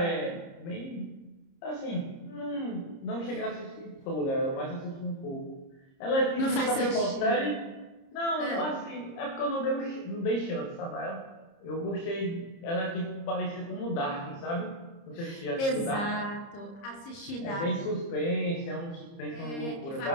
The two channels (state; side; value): late; right; 30 ms